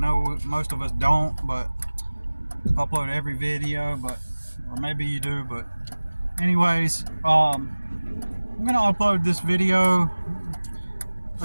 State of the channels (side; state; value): both; inverted; correlation -1.00